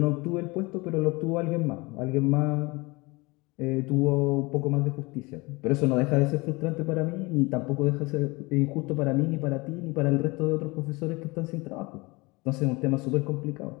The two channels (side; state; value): right; quieter; 24.7 dB